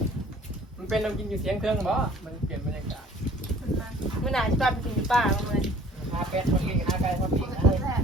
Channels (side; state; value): both; normal; correlation 0.53